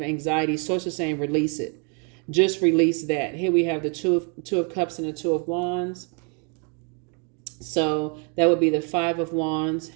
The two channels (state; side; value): quieter; left; 37.6 dB